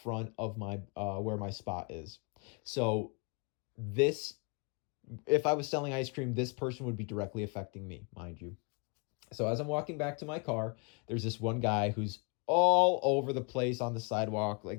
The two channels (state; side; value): quieter; right; 34.2 dB